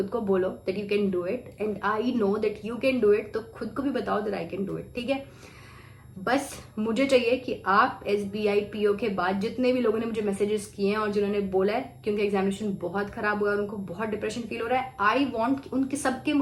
को बोलो that you can do it and I know that you can do it, तो खुद को भी बताओ that I can do it, ठीक है। बस मुझे चाहिए कि आप SBI PO के बाद जितने भी लोगों ने मुझे मैसेजेस किए हैं और जिन्होंने बोला है कि उनका एग्जामिनेशन बहुत खराब हुआ है, उनको बहुत डिप्रेशन फील हो रहा है, आई वांट उनके सबके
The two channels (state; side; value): identical; both; correlation 1.00